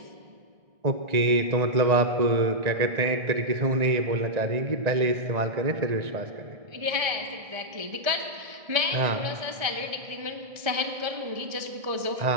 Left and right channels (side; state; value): left; late; 1.6 ms